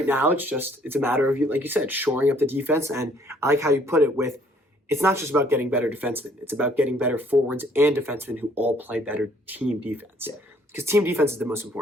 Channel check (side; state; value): both; normal; correlation 0.62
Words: now, it's a matter of, like you said, shoring up the defense. And I like how you put it with, it's not just about getting better defensemen. It's about getting better forwards and defensemen who all play better team defense. Because team defense is the most